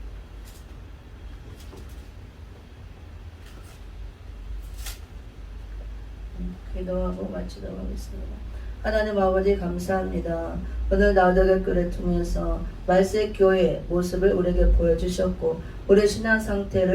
기도하고 마치도록 하겠습니다. 하나님 아버지 감사합니다. 오늘 나우덕의 글을 통해서 말세 교회의 모습을 우리에게 보여주셨고 우리 신앙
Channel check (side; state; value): both; identical; correlation 1.00